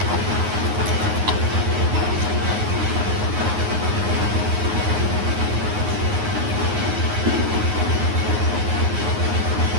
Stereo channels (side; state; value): left; late; 9.5 ms